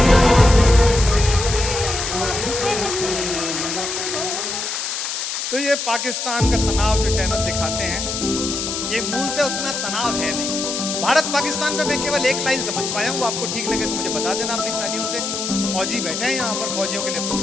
तो ये पाकिस्तान का तनाव जो चैनल दिखाते हैं, ये मूलतः उतना तनाव है नहीं। भारत पाकिस्तान पे मैं केवल एक लाइन समझ पाया हूँ, वो आपको ठीक लगे तो मुझे बता देना अपनी तालियों से। फौजी बैठे हैं यहाँ पर, फौजियों के लिए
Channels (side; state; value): left; noise; hiss, 3 dB below the sound